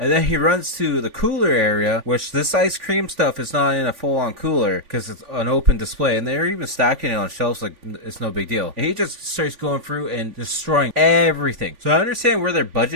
then he runs to the cooler area, which this ice cream stuff is not in a full-on cooler because it's an open display, and they're even stacking it on shelves like it's no big deal. And he just starts going through and destroying everything. So I understand where their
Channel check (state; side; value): late; left; 3.5 ms